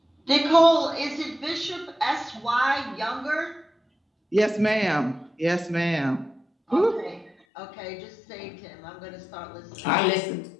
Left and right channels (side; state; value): right; drops out; at 7.4 s